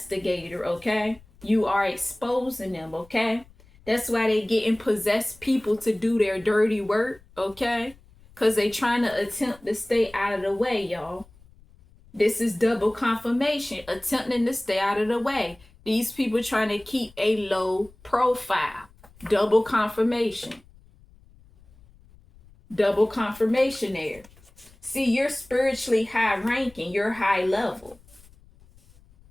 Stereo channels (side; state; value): left; noise; rumble, 27 dB below the sound